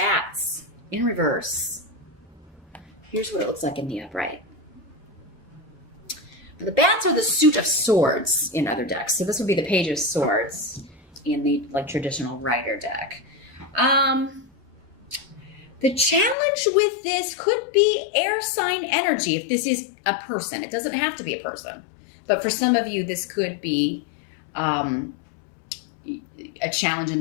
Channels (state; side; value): drops out; right; at 16.4 s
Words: in reverse. Here's what it looks like in the upright. The bats are the suit of swords in other decks. So this would be the Page of Swords in the traditional Rider deck. The challenge with this could be air sign energy if this is a person. It doesn't have to be a person. But for some of you, this could be a challenge in